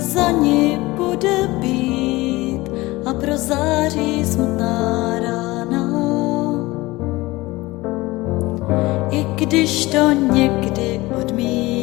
ní bude bít a prozáří smutná rána. I když to někdy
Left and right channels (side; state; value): right; quieter; 20.5 dB